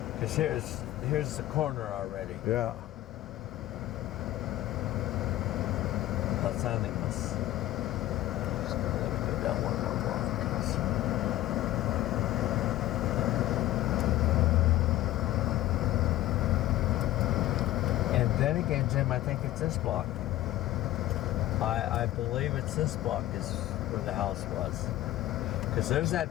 Because here's the corner already. Yeah. Los Animas. Just gonna let me go down one more block. And then again, Jim, I think it's this block. I believe it's this block is where the house was. Because there's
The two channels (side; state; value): right; quieter; 15.4 dB